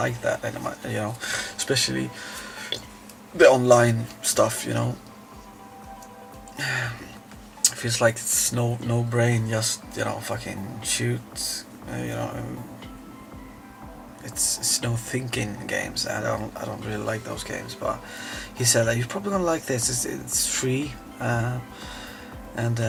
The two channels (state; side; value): identical; both; correlation 1.00